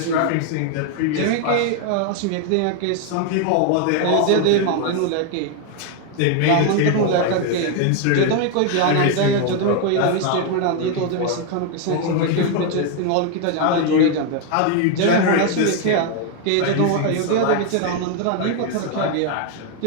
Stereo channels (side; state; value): both; different; correlation 0.01